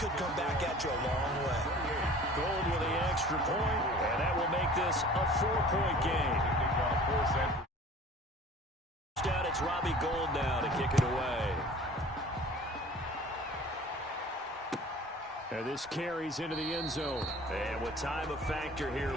come back at you a long way. Gold with the extra point, and that will make this a 4-point game. It's Robbie Gould now to kick it away. And this carries into the end zone. And with time a factor here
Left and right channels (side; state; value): both; normal; correlation 0.46